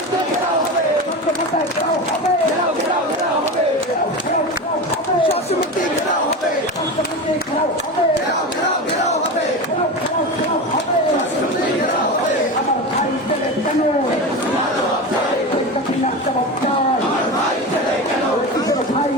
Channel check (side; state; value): both; normal; correlation 0.24